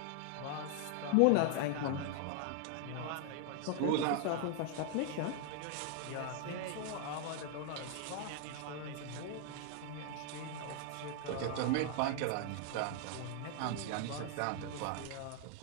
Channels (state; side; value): different; both; correlation 0.00